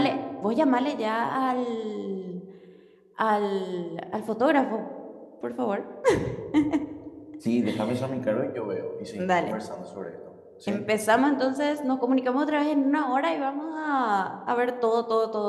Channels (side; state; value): both; identical; correlation 1.00